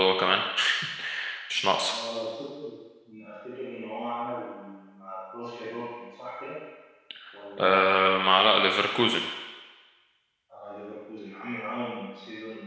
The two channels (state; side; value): identical; both; correlation 1.00